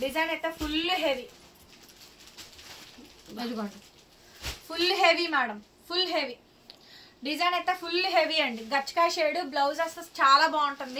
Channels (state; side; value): identical; both; correlation 1.00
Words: డిజైన్ అయితే ఫుల్ హెవీ, అదిగోండి full heavy madam, full heavy design అయితే ఫుల్ హెవీ అండి. గచ్చకాయ షేడ్, బ్లౌజ్ అసలు చాలా